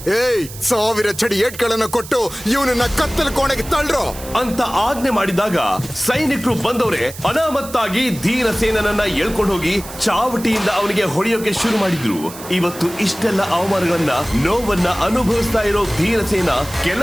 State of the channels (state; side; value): noise; right; hiss, 14 dB below the sound